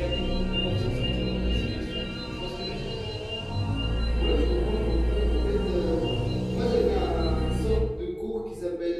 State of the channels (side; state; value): both; identical; correlation 1.00